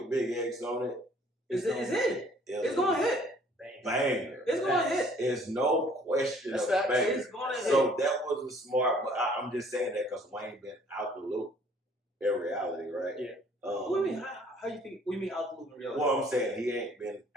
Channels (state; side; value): normal; both; correlation 0.58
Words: Big X on it. it's it. It's going to hit. Banger. It's going to hit. There's no question That's of facts. banger. It's going to hit. So that was a smart, but I'm just saying that because Wayne been out the loop in reality, right? Yeah. What do you mean? How you think? What do you mean out the loop in reality? Well, I'm saying he ain't been